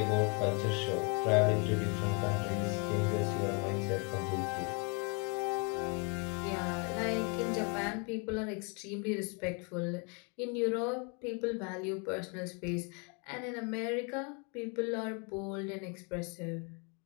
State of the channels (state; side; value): quieter; right; 34.5 dB